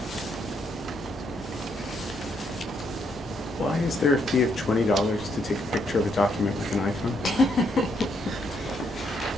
Why is there a fee of $20 to take a picture of a document with an iPhone?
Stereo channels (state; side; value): normal; both; correlation 0.74